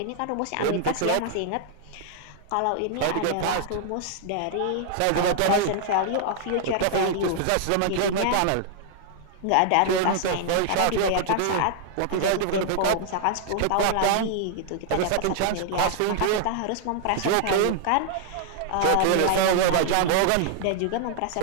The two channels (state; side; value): different; both; correlation 0.00